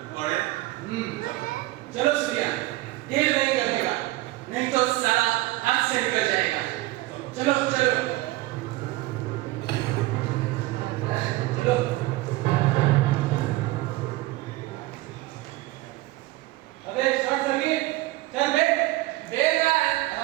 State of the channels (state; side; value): quieter; left; 18.4 dB